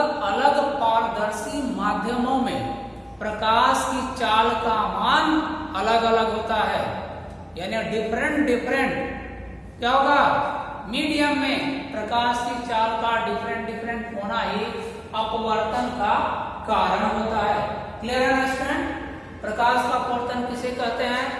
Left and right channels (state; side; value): identical; both; correlation 1.00